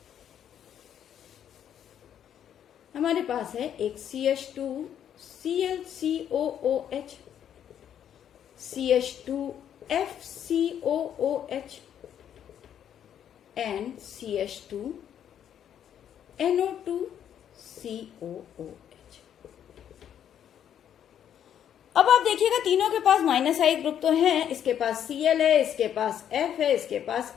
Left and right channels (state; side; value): quieter; right; 9.6 dB